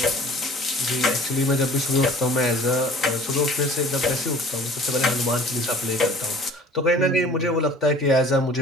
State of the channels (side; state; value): both; normal; correlation 0.47